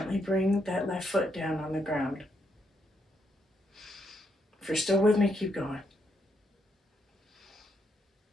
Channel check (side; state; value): both; normal; correlation 0.78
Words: bring that left foot down on the ground. If you're still with me, keep going.